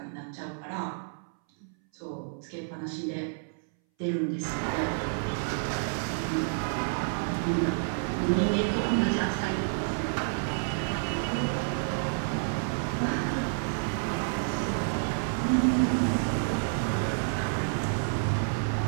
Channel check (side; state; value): left; silent; 58 dB below the other